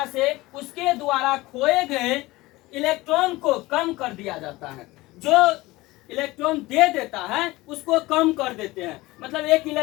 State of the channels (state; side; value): quieter; right; 20.0 dB